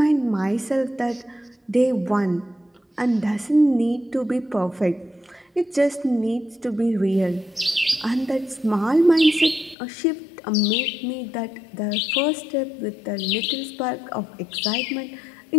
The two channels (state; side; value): drops out; right; at 9.8 s